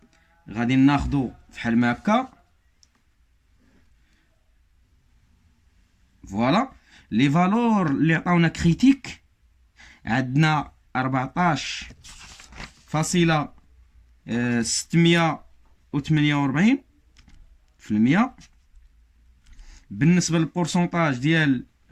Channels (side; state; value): both; identical; correlation 1.00